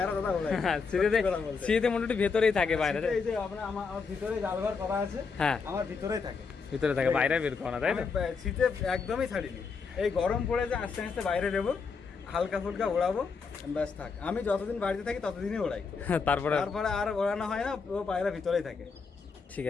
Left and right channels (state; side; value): quieter; right; 5.1 dB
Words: শীতে মোটামুটি ভেতরেই থাকে বাইরে। এই যে আমার ভিতরে জালঘর করা আছে, হ্যাঁ আমার ভিতরেই থাকে, বাইরে বের করা, তাই না? শীতে একদমই ছাড়িনি, এই গরম পড়ে যে আস্তে আস্তে বাইরে দেবো, হালকা ফুলকা ওড়াবো, ব্যাস থাক। আমি যতদিন বাড়িতে থাকি ততদিনই ওড়াই, তারপরে আর ওড়ানো হয় না, ও পায়রা ভিতরেই থাকে। ঠিক